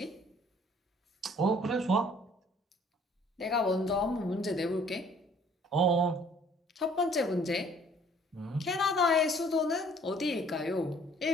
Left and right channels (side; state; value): both; normal; correlation 0.57